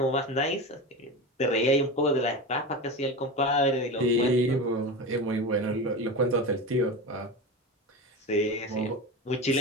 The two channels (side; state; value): both; normal; correlation 0.24